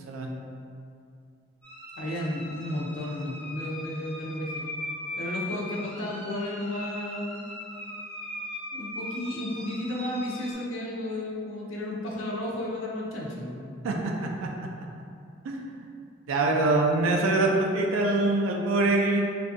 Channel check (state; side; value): normal; both; correlation 0.36